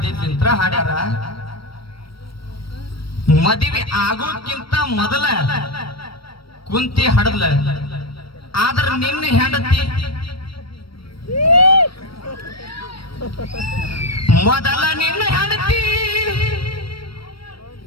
ಹಾಡ್ಯಾರ ಮದುವೆ ಆಗೋಕ್ಕಿಂತ ಮೊದಲ ಕುಂತಿ ಹಡದ್ಲ ಆದ್ರ ನಿನ್ನ ಹೆಂಡತಿ ಮೊದಲ ನಿನ್ನ ಹೆಂಡತಿ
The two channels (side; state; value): right; late; 0.75 ms